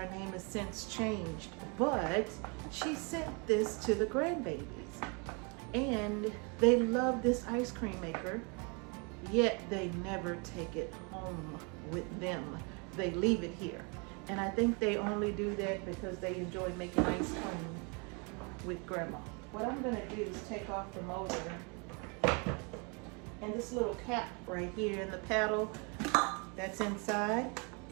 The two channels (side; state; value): left; quieter; 33.0 dB